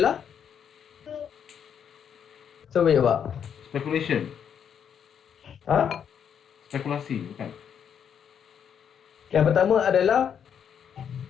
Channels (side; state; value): right; quieter; 8.1 dB